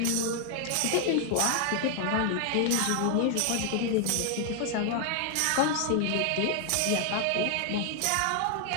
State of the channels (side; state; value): both; different; correlation 0.00